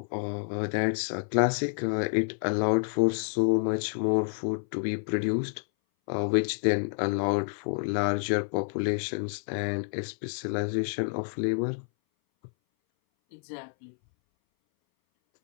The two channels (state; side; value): silent; right; 59 dB below the other